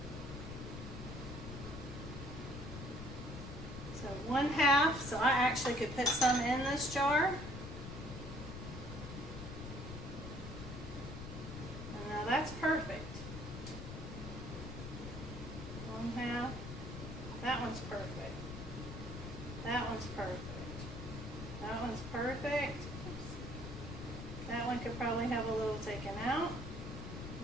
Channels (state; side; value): noise; left; rumble, 8 dB below the sound